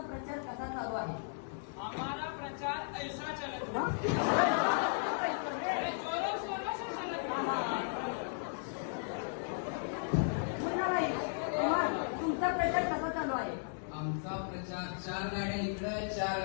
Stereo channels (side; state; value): right; silent; digital silence